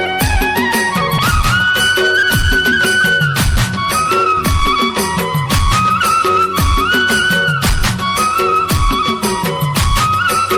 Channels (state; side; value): identical; both; correlation 1.00